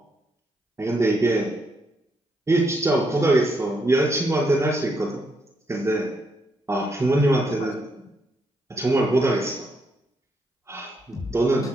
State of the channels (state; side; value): normal; both; correlation 0.77